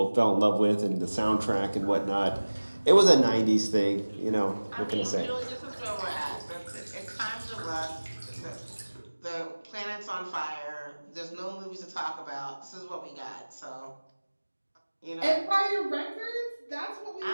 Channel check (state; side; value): inverted; both; correlation -1.00